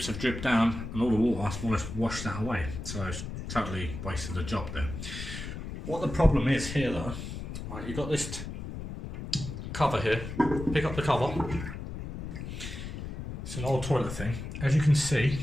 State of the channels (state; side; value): noise; left; rumble, 7 dB below the sound